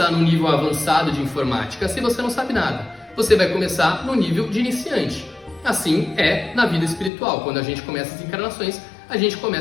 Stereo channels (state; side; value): drops out; right; at 7.1 s